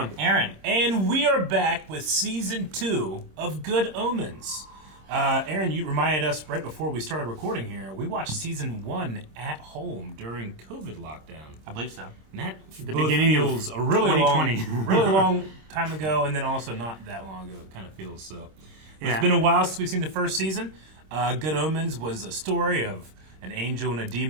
Aaron. And we are back with Season 2 of Good Omens. Aaron, you reminded us right before we started recording here, we watched Season 1 at home during COVID lockdown. I believe so. And that The beginning feels of a really 2020. really long time ago, and then also not that long ago, it kind of feels so. Yeah. It's been a while since we've seen the first season. Good Omens was a story of an angel and a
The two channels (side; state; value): left; late; 26 ms